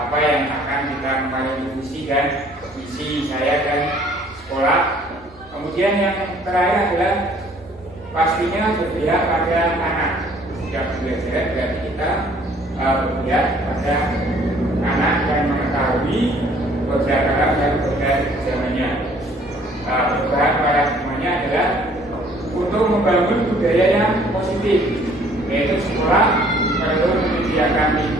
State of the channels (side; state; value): right; noise; hum, 26 dB below the sound